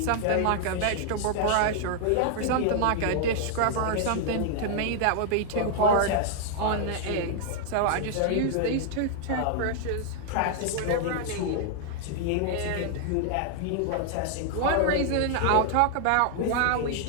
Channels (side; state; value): both; different; correlation 0.00